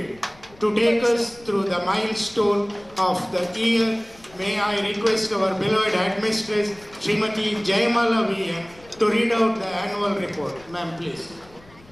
To take us through the milestone of the year, may I request our beloved headmistress Srimati Jayamala VN to read out the annual report. Ma'am, please.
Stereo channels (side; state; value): left; noise; rumble, 25 dB below the sound